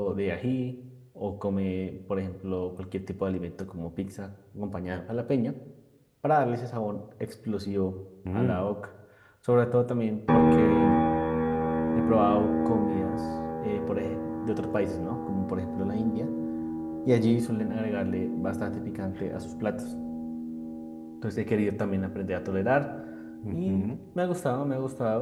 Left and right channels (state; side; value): identical; both; correlation 1.00